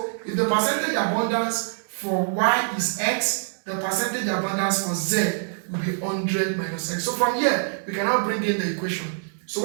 if the percentage abundance for Y is X, the percentage abundance for Z will be 100 minus X. So from here, we can now bring in the equation. So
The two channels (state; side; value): silent; left; digital silence